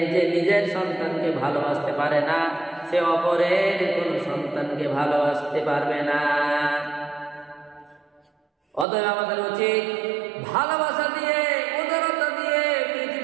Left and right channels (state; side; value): drops out; left; at 8.8 s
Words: যে নিজের সন্তানকে ভালোবাসতে পারে না, সে অপরের কোন সন্তানকে ভালোবাসতে পারবে না। অতএব আমাদের উচিত ভালোবাসা দিয়ে, উদারতা দিয়ে